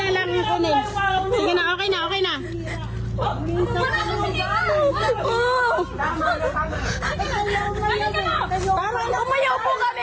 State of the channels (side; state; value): both; identical; correlation 1.00